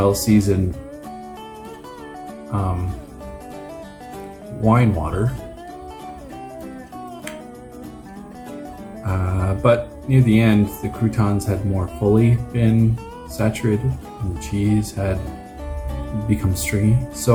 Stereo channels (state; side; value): identical; both; correlation 1.00